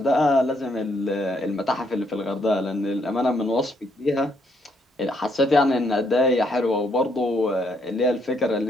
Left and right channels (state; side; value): normal; both; correlation 0.72